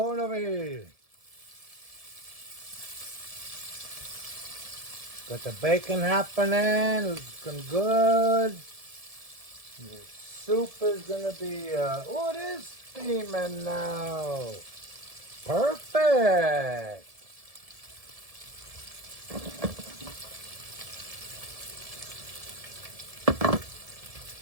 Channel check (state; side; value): late; left; 1.7 ms